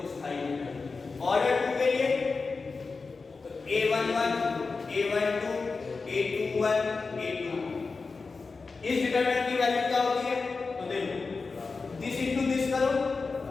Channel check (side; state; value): right; quieter; 4.3 dB